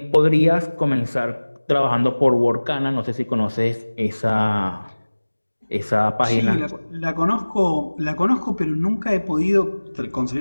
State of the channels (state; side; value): inverted; both; correlation -1.00